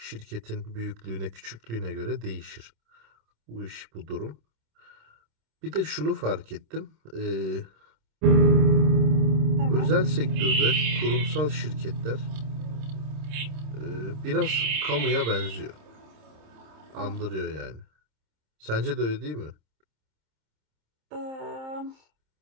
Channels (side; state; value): left; late; 27 ms